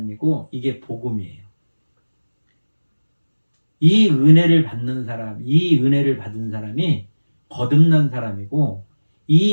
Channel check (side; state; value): both; inverted; correlation -1.00